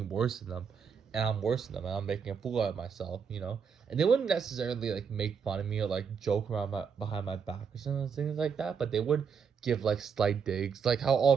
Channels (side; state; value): left; quieter; 6.4 dB